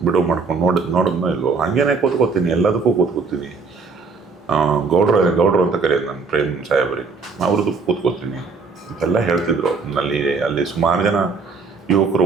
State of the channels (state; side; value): quieter; left; 4.7 dB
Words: ಬಿಡುವು ಮಾಡ್ಕೊಂಡು ನೋಡಿದ್ನೋ ಇಲ್ವೋ, ಹಾಗೇನೆ ಕೂತ್ಕೋತೀನಿ, ಎಲ್ಲದಕ್ಕೂ ಕೂತ್ಕೋತೀನಿ. ಗೌಡ್ರು ಅಂತ ಕರೆಯೋದು ನಾನು ಪ್ರೇಮ್ ಸಾಹೇಬ್ರಿಗೆ, ಅವ್ರದ್ದು ಕೂತ್ಕೋತೀನಿ. ಇದೆಲ್ಲ ಹೇಳ್ತಿದ್ರು. ಅಲ್ಲಿ ಸುಮಾರು ಜನ ಯುವಕರು